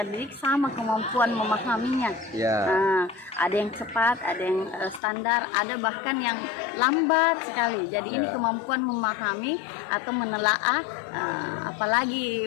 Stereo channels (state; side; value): drops out; right; at 5.0 s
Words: didik sama kemampuan memahaminya. Ya. Ada yang cepat, ada yang standar, ada bahkan yang lambat sekali. Jadi ini kemampuan memahami atau menelaah,